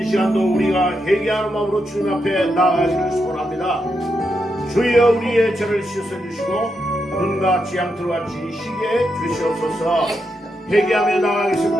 시간도 우리가 회개하는 마음으로 주님 앞에 나아가시길 소원합니다. 주여 우리의 죄를 씻어주시고 눈과 지향틀과 지시게 주시옵소서. 회개하며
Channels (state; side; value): normal; both; correlation 0.84